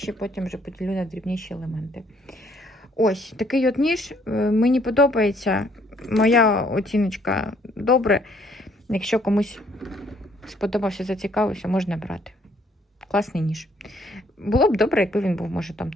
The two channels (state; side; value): normal; both; correlation 0.65